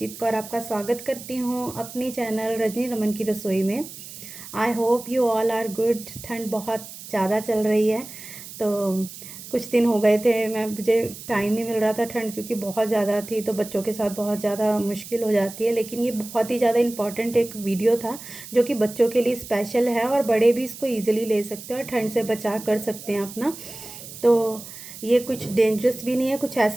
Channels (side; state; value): right; noise; hiss, 14 dB below the sound